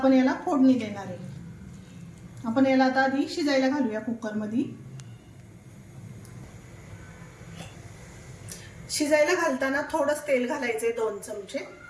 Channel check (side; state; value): both; identical; correlation 1.00